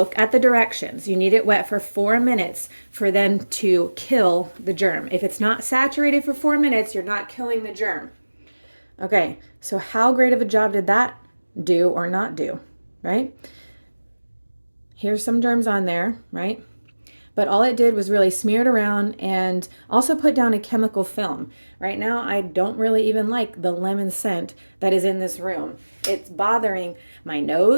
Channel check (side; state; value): both; inverted; correlation -1.00